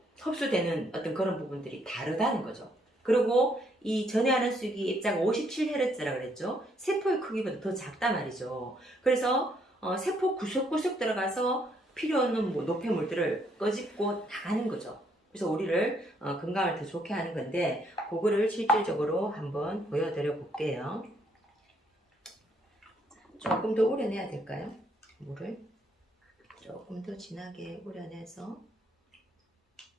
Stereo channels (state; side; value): normal; both; correlation 0.70